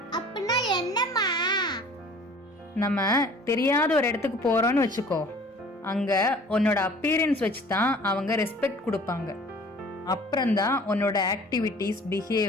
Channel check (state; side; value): normal; both; correlation 0.49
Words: அப்படின்னா என்னம்மா? நம்ம தெரியாத ஒரு இடத்துக்கு போறோம்னு வச்சுக்கோ, அங்க உன்னோட அப்பியரன்ஸ் வச்சு தான் அவங்க ரெஸ்பெக்ட் கொடுப்பாங்க. அப்புறம்தான் உன்னோட ஆக்டிவிட்டீஸ்